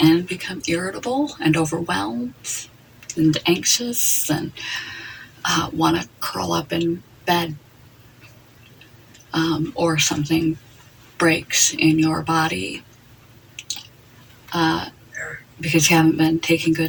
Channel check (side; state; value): both; identical; correlation 1.00